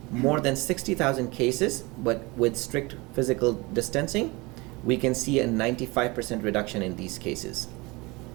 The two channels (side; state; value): left; quieter; 24.6 dB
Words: more than 60,000 cases, but with strict physical distancing, we can see a 95% reduction in these cases.